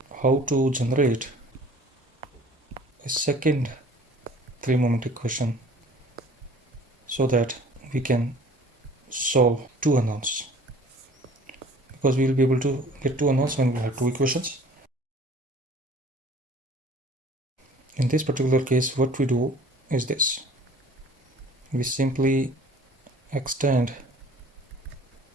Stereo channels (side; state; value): both; normal; correlation 0.50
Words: how to generate a second 3-moment equation so that we can solve two unknowns, because we will be able to get two unknowns when we have two equations. In this particular case, what we do is this: we simply extend